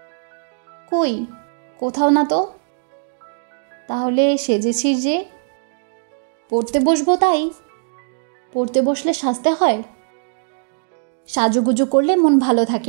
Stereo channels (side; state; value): left; silent; digital silence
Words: কই, কোথাও না তো। তাহলে সেজেছিস যে? পড়তে বসবো তাই। পড়তে বসলে সাজতে হয়? সাজুগুজু করলে মন ভালো